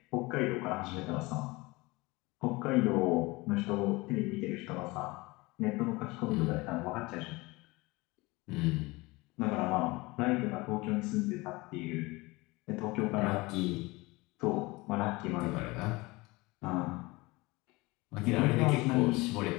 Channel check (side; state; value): right; quieter; 23.0 dB